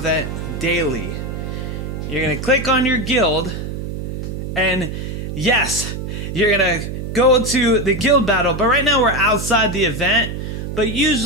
daily. You're going to click on your guild, and yes, you're going to go to the guild battle. But right now we're outside the event. But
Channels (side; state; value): right; noise; hum, 6 dB below the sound